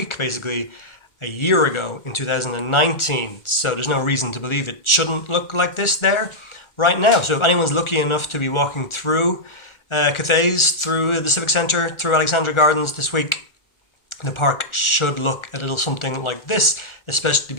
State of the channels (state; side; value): late; right; 1.4 ms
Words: basically a year ago in 2019. So there's no reason to believe it shouldn't look like this there right now. So if anyone's lucky enough to be walking through Cathays, through the Civic Centre, through Alexandra Gardens this week, the park should look a little something like this, especially